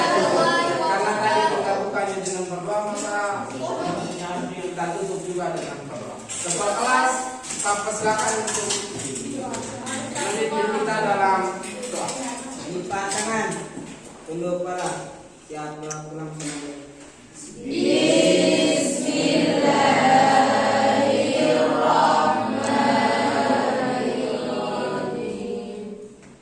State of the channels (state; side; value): identical; both; correlation 1.00